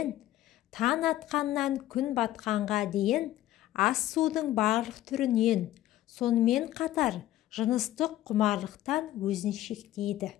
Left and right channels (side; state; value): right; quieter; 14.3 dB